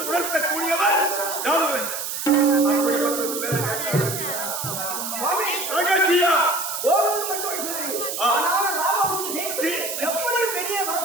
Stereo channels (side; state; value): right; noise; hiss, 4 dB below the sound